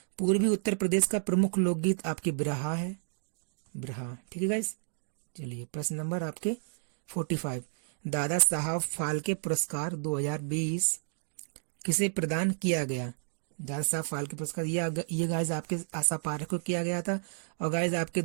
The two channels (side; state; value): left; silent; digital silence